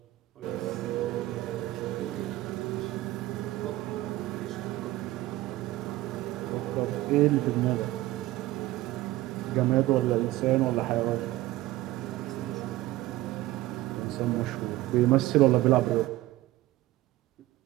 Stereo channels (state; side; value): quieter; left; 17.0 dB